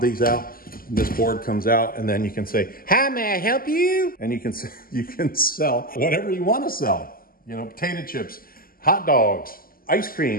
out, this board comes out, and then you can say, "Hi, may I help you?" And you can sell whatever you want to sell. You know, potato chips, hot dogs, ice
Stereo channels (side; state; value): right; late; 0.42 ms